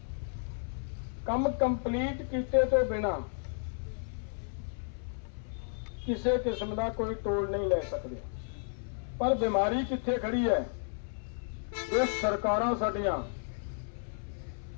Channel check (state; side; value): silent; right; 56 dB below the other